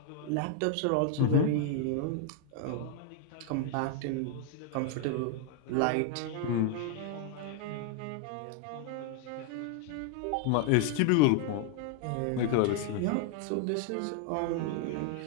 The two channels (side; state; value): both; different; correlation 0.00